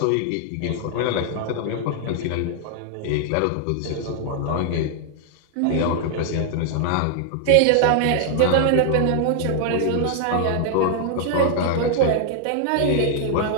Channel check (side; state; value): both; different; correlation 0.00